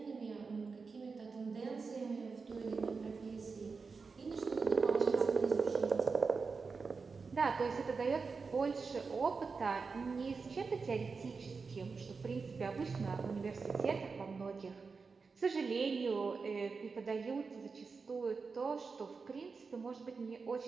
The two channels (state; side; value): quieter; left; 4.8 dB